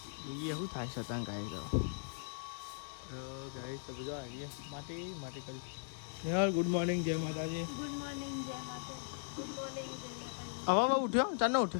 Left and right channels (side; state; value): right; silent; digital silence